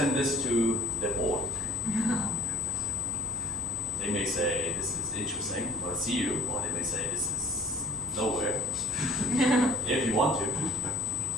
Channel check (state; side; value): normal; both; correlation 0.47